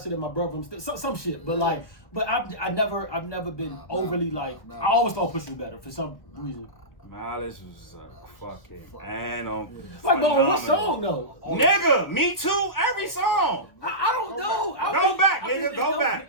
than my brother, I'm still some shit. But like, I've never been overly like. I always thought Push was better for some reason. Miles was fucking animal. Like, but what song though? Nigga, me too. Every song. I don't know. Go back, nigga. Go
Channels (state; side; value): late; right; 1.3 ms